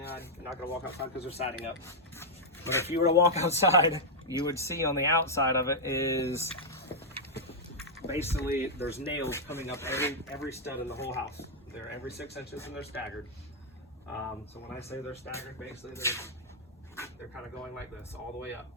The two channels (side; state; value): both; normal; correlation -0.05